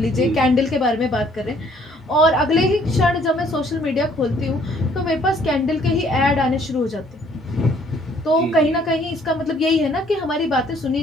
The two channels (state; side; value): normal; both; correlation 0.62